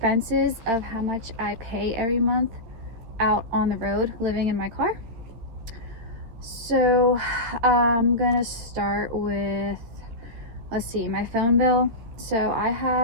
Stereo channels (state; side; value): late; left; 13 ms